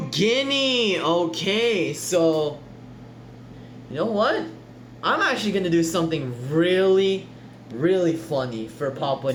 Guinea. Okay, so you know what? I'm actually gonna do something really funny for Papua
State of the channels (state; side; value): identical; both; correlation 1.00